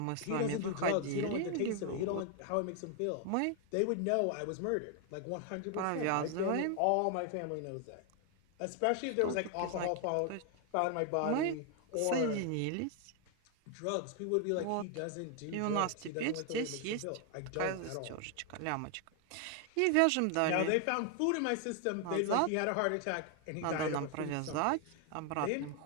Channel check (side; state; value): both; different; correlation 0.00